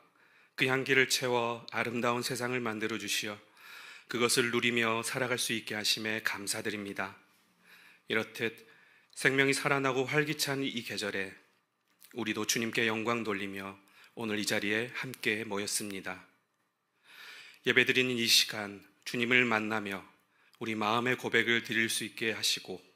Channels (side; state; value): both; identical; correlation 1.00